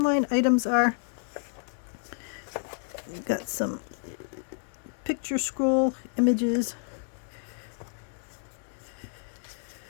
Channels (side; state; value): right; silent; 58 dB below the other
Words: items are. We've got some picture scroll images.